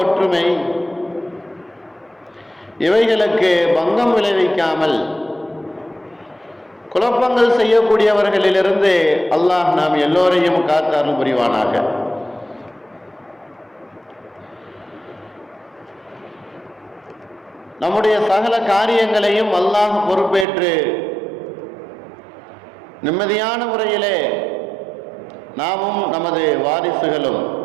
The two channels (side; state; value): left; drops out; at 20.5 s